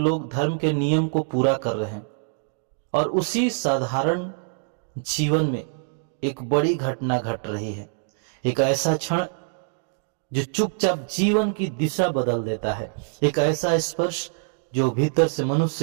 लोग धर्म के नियम को पूरा कर रहे हैं, और उसी साधारण जीवन में एक बड़ी घटना घट रही है। एक ऐसा क्षण जो चुपचाप जीवन की दिशा बदल देता है, एक ऐसा स्पर्श जो भीतर से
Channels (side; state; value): left; silent; digital silence